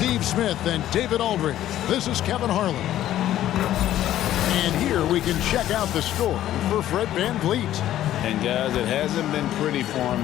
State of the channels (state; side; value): quieter; right; 12.8 dB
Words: Smith, and David Aldridge. This is Kevin Harlan. And here we can check out the score for Fred VanVleet. And guys, it hasn't been pretty for him